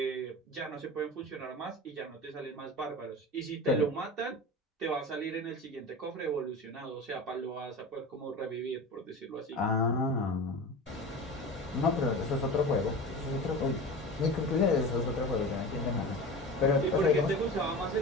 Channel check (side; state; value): both; normal; correlation 0.32